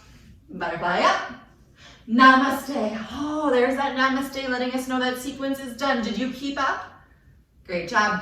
Butterfly up. Namaste. Oh, there's that namaste letting us know that sequence is done. Did you keep up? Great job.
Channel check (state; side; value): identical; both; correlation 1.00